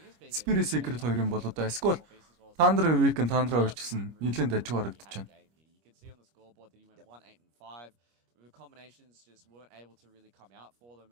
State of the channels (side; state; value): left; late; 25 ms